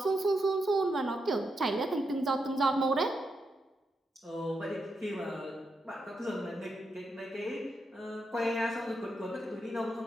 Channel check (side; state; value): both; normal; correlation 0.84